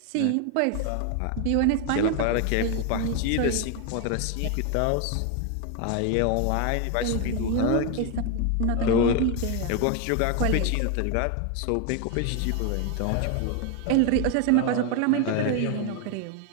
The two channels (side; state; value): both; different; correlation 0.01